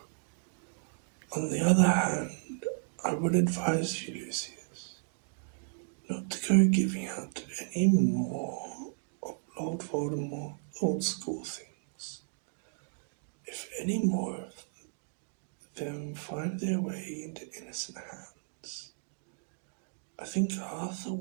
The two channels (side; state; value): left; silent; digital silence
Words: On the other hand, I would advise you, Lucius, not to go giving out any more of Lord Voldemort's old school things. If any more of them find their way into innocent hands, I think Arthur